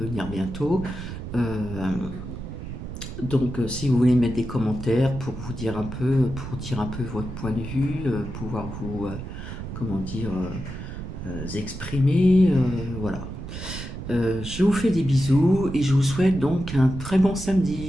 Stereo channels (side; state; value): right; noise; rumble, 9 dB below the sound